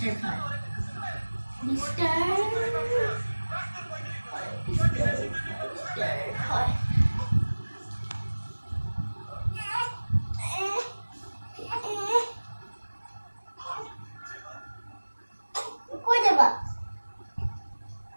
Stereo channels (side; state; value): both; inverted; correlation -1.00